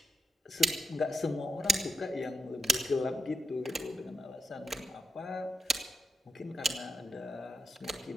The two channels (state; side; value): normal; both; correlation 0.84